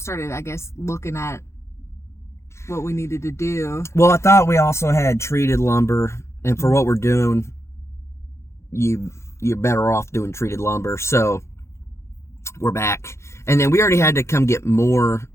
I guess, looking at what we needed to do. Well, I thought we also had treated lumber, and for what we're doing, you're better off doing treated lumber. So we're back, and then we already had to come get more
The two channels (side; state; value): right; late; 0.13 ms